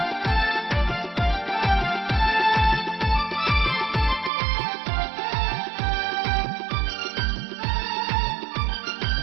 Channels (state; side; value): drops out; left; at 4.3 s